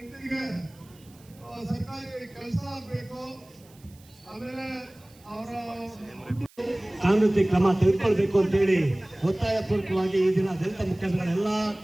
ಸರ್ಕಾರಿ ಕೆಲಸ ಆಗಬೇಕು. ಆಮೇಲೆ ಅವರ ಕಾನೂನು ಕ್ರಮ ತೆಗೆದುಕೊಳ್ಬೇಕು ಅಂತೇಳಿ ಒತ್ತಾಯ ಪೂರ್ವಕವಾಗಿ ಈ ದಿನ ದಲಿತ ಮುಖಂಡಗಳೆಲ್ಲ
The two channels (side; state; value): right; noise; hiss, 28 dB below the sound